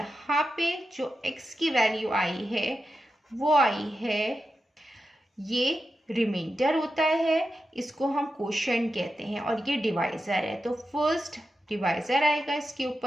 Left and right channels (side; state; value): both; normal; correlation 0.90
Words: पे जो x की वैल्यू आई है वो आई है, ये रिमाइंडर होता है, इसको हम क्वोशंट कहते हैं, और ये डिवाइजर है। तो फर्स्ट डिवाइजर आएगा, इसके